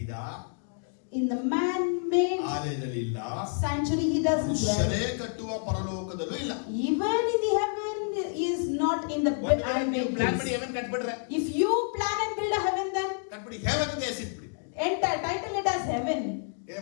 In the man-made ಆಲಯದಲ್ಲಿ ಇಲ್ಲ, sanctuary he doesn't dwell. ಮನುಷ್ಯರೇ ಕಟ್ಟುವ ಪರಲೋಕದಲ್ಲೂ ಇಲ್ಲ. Even in the heaven is not in the ನೀವು ಪ್ಲಾನ್ ಮಾಡಿ place. ಹೆವನ್ ಕಟ್ಬಿಡ್ರೆ, If you plan and build a heaven, then ಕಟ್ಬಿಡಿ, ಹೆವನ್ ಅಂತ ಹೆಸರಿಟ್ಬಿಡಿ. enter, title it as heaven.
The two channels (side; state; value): right; silent; 59 dB below the other